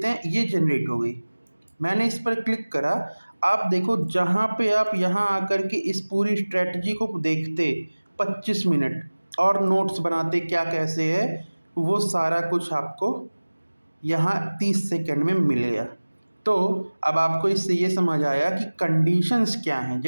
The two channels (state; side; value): inverted; both; correlation -1.00